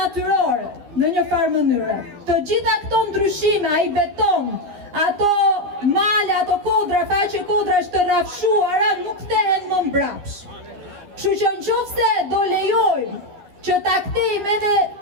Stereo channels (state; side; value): late; left; 12 ms